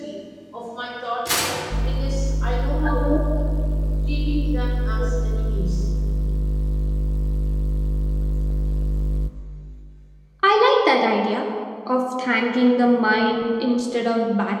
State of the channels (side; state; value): both; identical; correlation 1.00